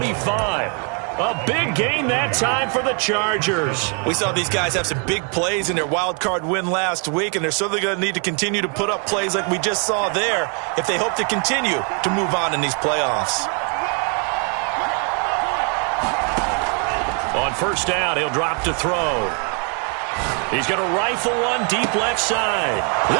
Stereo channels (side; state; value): left; quieter; 38.8 dB